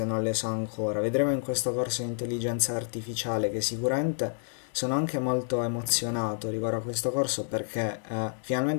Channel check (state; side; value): silent; right; 58 dB below the other